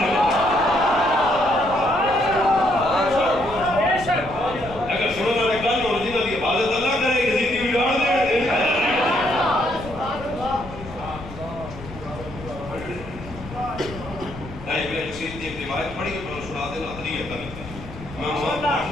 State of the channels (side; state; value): left; noise; rumble, 14 dB below the sound